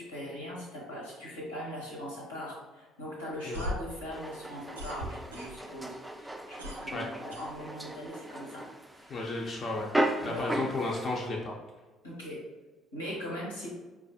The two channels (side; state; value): both; normal; correlation 0.68